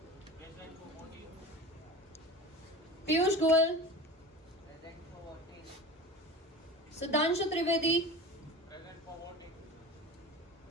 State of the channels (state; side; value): normal; both; correlation 0.33